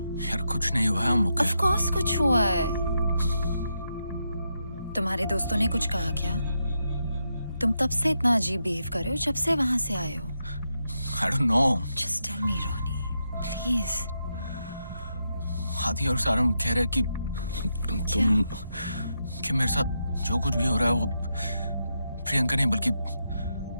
यार कुछ नहीं हुआ है, I'm okay. Of course कुछ हुआ है। तुम्हारे दोस्तों ने कुछ कहा क्या? तुम तब से इतना अजीब बिहेव कर रहे हो जब से वहां से आए हो। I don't know. Just tell me, Ronnie, please. आदि और सारम कह रहे कि तुम कि मेरे साथ जो कुछ भी हो रहा है वो प्रियंका नहीं बल्कि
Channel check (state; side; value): inverted; both; correlation -0.84